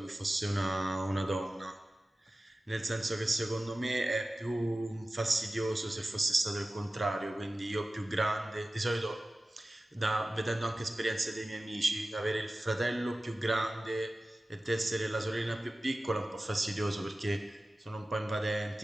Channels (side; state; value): both; normal; correlation 0.96